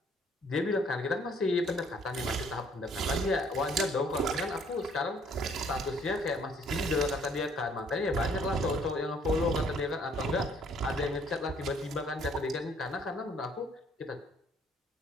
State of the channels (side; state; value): both; normal; correlation 0.61